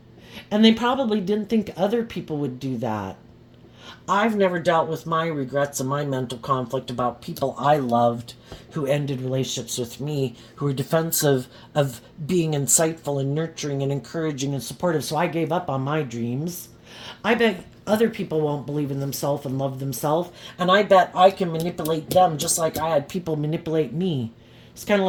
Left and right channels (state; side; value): identical; both; correlation 1.00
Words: And they probably didn't think other people would do that. I've never dealt with my regrets and my mental conflict about people I loved who ended relationships with me, who were defensive of being insightful and nurturing and encouraging and supportive. So I gave up on my dreams. I bet other people won't believe in themselves and love themselves, and I bet I can manipulate them just like I had people manipulate me. It's kind of